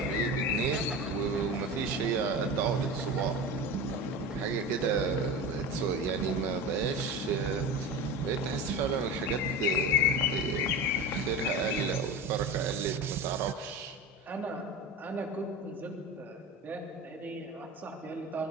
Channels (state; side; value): normal; both; correlation 0.28